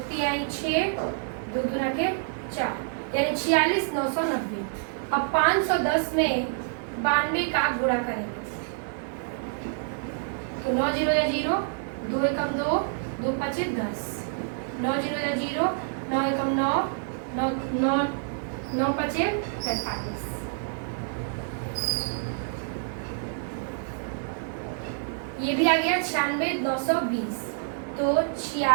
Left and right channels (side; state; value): left; silent; digital silence